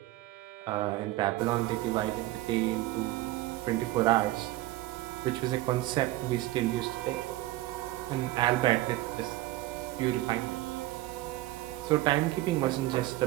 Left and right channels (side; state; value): left; quieter; 16.9 dB